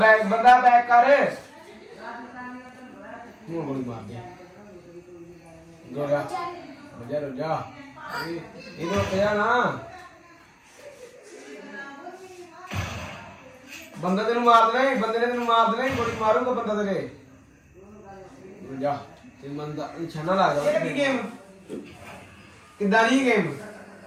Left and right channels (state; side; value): identical; both; correlation 1.00